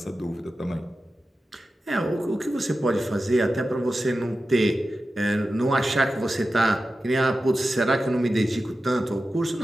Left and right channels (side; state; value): both; normal; correlation 0.93